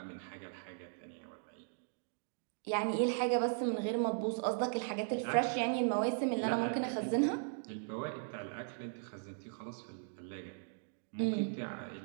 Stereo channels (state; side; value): silent; left; digital silence